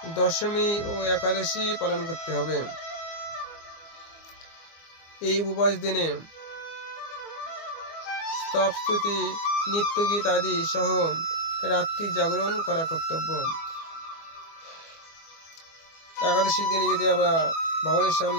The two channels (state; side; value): late; right; 24 ms